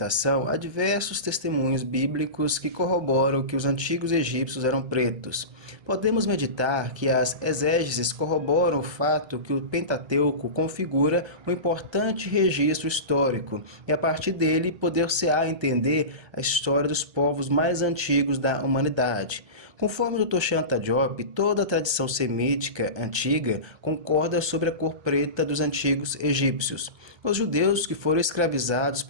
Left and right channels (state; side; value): late; left; 1.3 ms